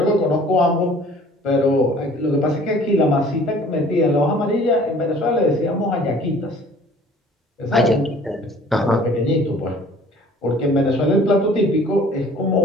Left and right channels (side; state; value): both; normal; correlation 0.51